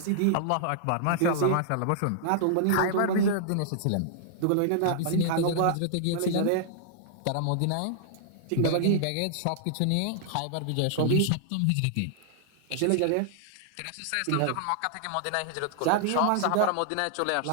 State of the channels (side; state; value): both; different; correlation -0.01